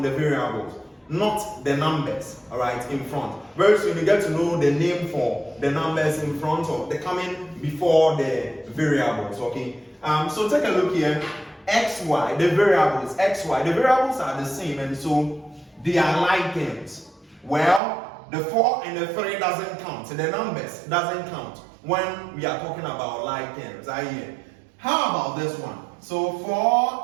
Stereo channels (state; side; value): drops out; left; at 17.8 s